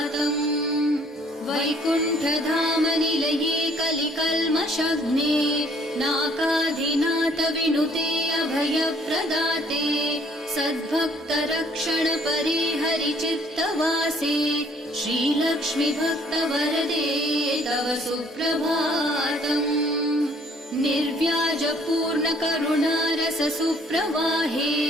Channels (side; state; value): both; normal; correlation 0.61